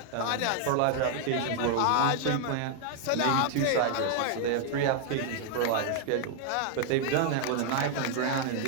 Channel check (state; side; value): different; both; correlation 0.00